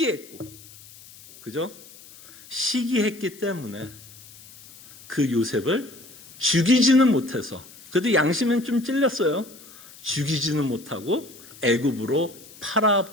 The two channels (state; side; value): noise; left; hiss, 20 dB below the sound